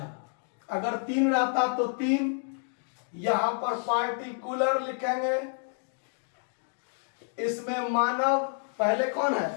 अगर 3 रहता तो 3। यहां पर पार्टिकुलर लिखेंगे, इसमें मानव पहले कौन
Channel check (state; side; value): silent; right; 58 dB below the other